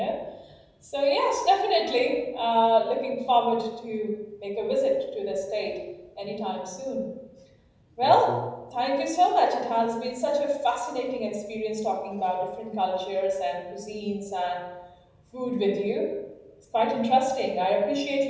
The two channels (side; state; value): both; identical; correlation 1.00